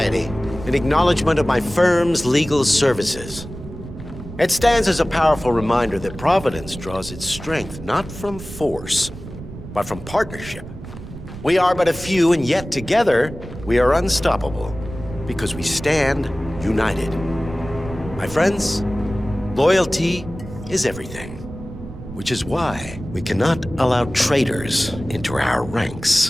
in acknowledgement of my firm's legal services. It stands as a powerful reminder that Providence draws its strength not from force, but from partnership. We are but a few, and yet together we are unstoppable because we stand united. My friends, loyalty is everything, which is why we cannot allow traitors into our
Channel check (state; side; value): noise; right; rumble, 13 dB below the sound